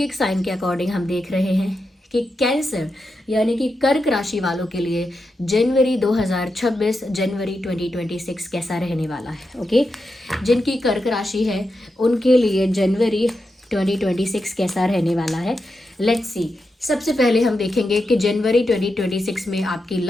साइन के अकॉर्डिंग हम देख रहे हैं कि कैंसर यानी कि कर्क राशि वालों के लिए जनवरी 2026 जनवरी 2026 कैसा रहने वाला है। ओके, जिनकी कर्क राशि है उनके लिए जनवरी 2026 कैसा रहने वाला है। Let's see. सबसे पहले हम देखेंगे कि जनवरी 2026 में आपकी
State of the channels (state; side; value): normal; both; correlation 0.87